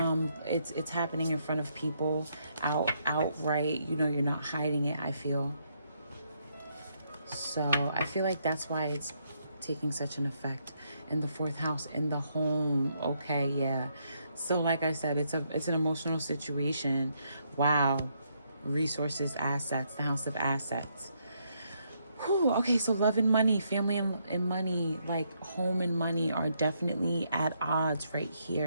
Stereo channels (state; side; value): inverted; both; correlation -0.75